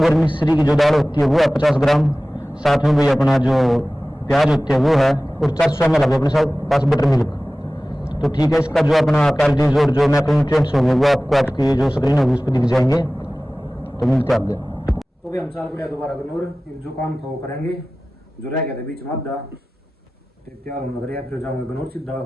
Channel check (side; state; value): both; normal; correlation 0.97